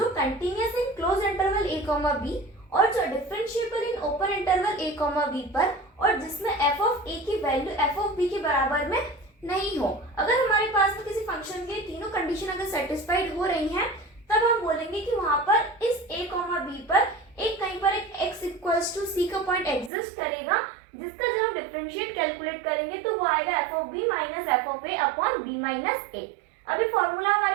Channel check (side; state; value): left; drops out; at 19.9 s